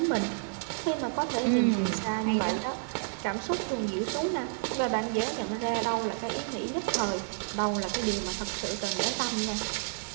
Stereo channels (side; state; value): left; silent; digital silence